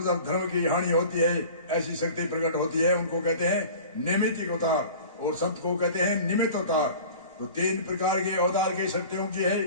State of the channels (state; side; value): inverted; both; correlation -0.41